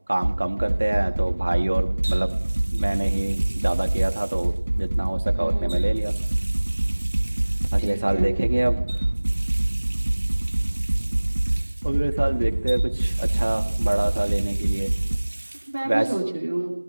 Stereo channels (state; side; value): inverted; both; correlation -1.00